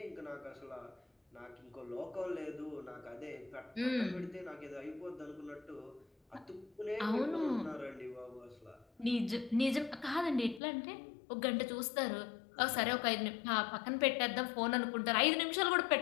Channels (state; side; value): drops out; right; at 10.6 s